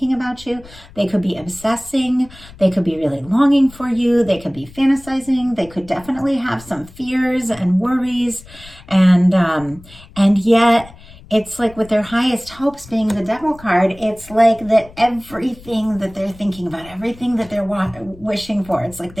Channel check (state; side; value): noise; left; rumble, 21 dB below the sound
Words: about you. They could be obsessing. They could be really longing for you. They could be fantasizing. They could definitely have some fears and worries, and yet it's like with their highest hopes being the Devil card, it's like that everything that they're thinking about, everything that they're wishing for, it's like